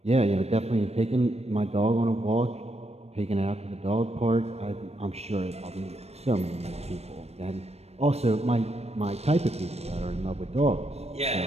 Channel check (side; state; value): left; late; 0.31 ms